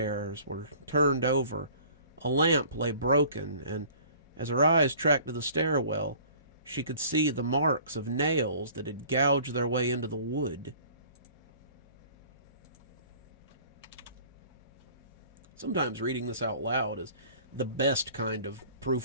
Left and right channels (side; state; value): both; inverted; correlation -0.50